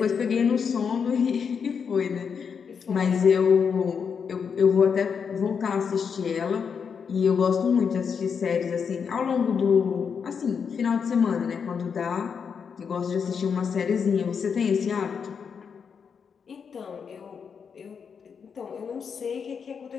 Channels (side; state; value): right; quieter; 6.5 dB